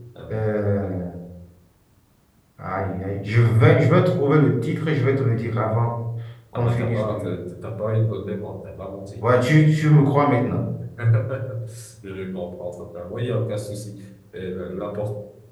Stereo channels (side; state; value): both; identical; correlation 1.00